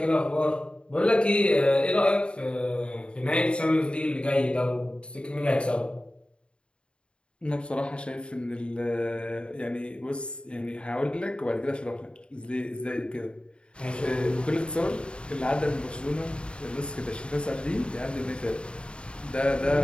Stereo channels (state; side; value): late; right; 0.054 ms